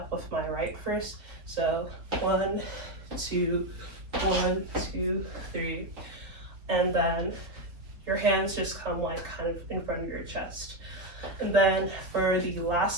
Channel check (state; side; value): late; left; 3.7 ms